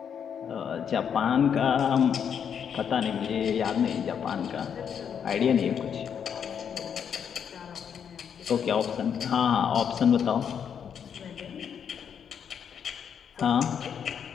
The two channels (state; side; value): quieter; right; 7.8 dB